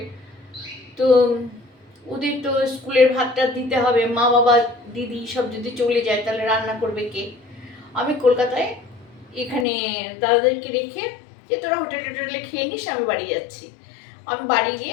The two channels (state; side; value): drops out; right; at 9.7 s